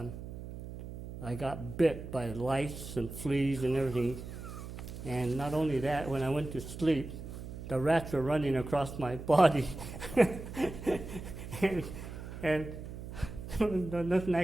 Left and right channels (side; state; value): right; noise; hum, 10 dB below the sound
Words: I got bit by lice and fleas and everything. And not only that, when I went to sleep, the rats were running across my body. and nothing